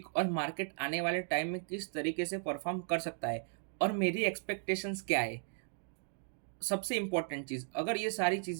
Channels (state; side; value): silent; left; 54 dB below the other